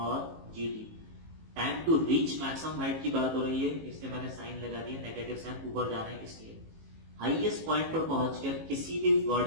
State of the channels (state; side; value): late; left; 18 ms